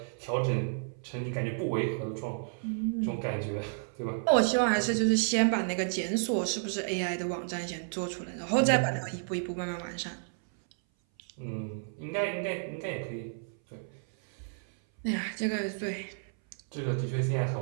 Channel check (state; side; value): silent; left; 57 dB below the other